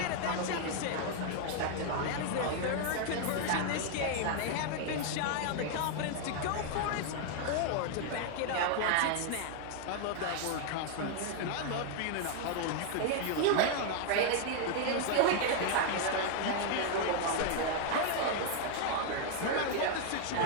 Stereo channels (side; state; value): both; different; correlation 0.00